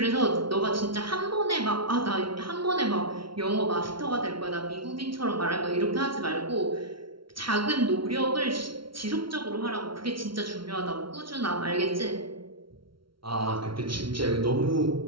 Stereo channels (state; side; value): late; left; 0.74 ms